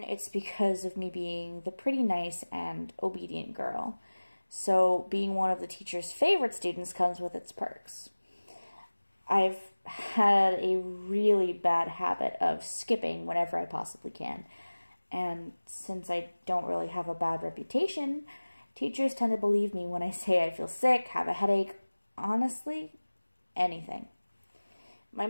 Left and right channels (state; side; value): inverted; both; correlation -1.00